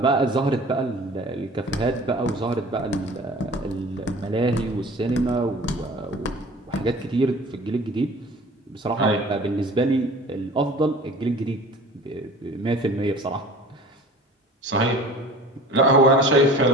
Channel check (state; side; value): normal; both; correlation 0.44